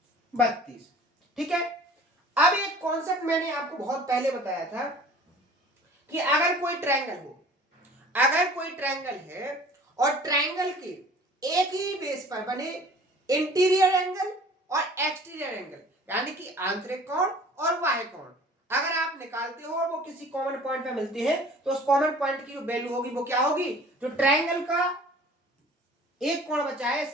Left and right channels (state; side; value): normal; both; correlation 0.48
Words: 32। ठीक है, अब एक कॉन्सेप्ट मैंने आपको बहुत पहले बताया था कि अगर कोई ट्रायंगल हो, अगर कोई ट्रायंगल है और ट्रायंगल के एक ही बेस पर बने इंटीरियर एंगल और एक्सटीरियर एंगल, यानी कि आंतरिक कोण और बाह्य कोण, अगर आप निकालते हो और वो किसी कॉमन पॉइंट पे मिलते हैं, तो उस कॉमन पॉइंट की जो वैल्यू होगी वो क्या होगी, जो ट्रायंगल का एक कोण बचा है